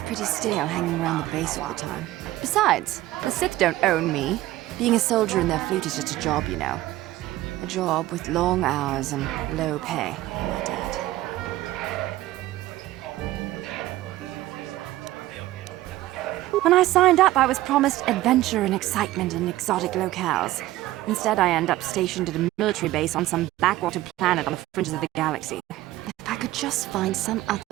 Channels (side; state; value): left; quieter; 16.1 dB